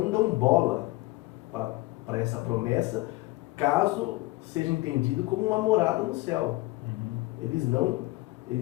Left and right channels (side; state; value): right; quieter; 20.1 dB